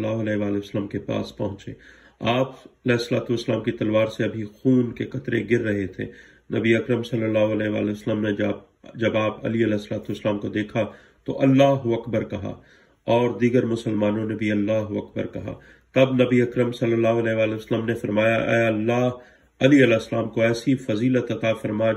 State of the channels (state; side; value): identical; both; correlation 1.00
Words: علیہ وآلہ وسلم کے پاس پہنچے۔ آپ علیہ السلام کی تلوار سے ابھی خون کے قطرے گر رہے تھے۔ نبی اکرم صلی اللہ علیہ وآلہ وسلم نے جب آپ علی علیہ السلام کو دیکھا تو اللہ اکبر کہا اور دیگر مسلمانوں نے بھی اللہ اکبر کہا۔ تب نبی اکرم صلی اللہ علیہ وآلہ وسلم نے فرمایا، اے اللہ، علی علیہ السلام کو ایسی فضیلت عطا فرما